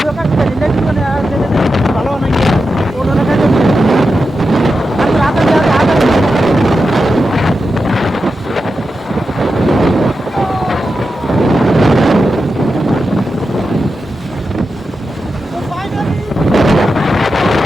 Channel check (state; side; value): normal; both; correlation 0.90